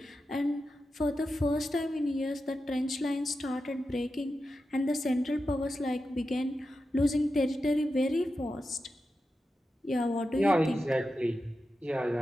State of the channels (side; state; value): both; normal; correlation 0.90